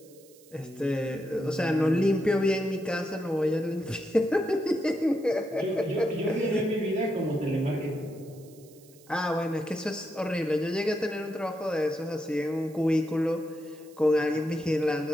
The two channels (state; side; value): noise; right; hiss, 25 dB below the sound